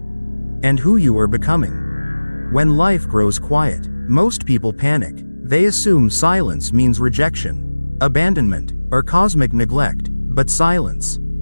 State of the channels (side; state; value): both; inverted; correlation -1.00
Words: and who you are becoming. When life grows quiet, most people panic. They assume silence means rejection, abandonment, or cosmic neglect. But silence,